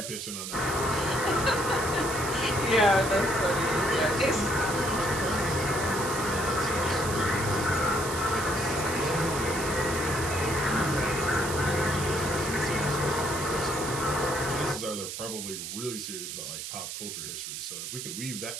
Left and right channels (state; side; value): noise; right; hiss, 7 dB below the sound